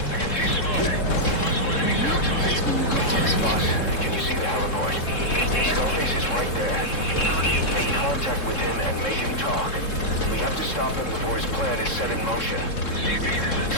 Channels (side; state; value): right; late; 3.7 ms